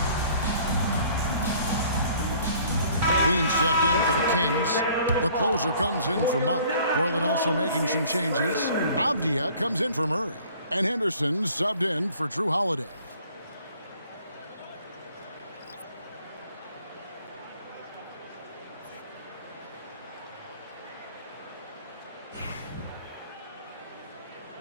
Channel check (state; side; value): inverted; both; correlation -0.55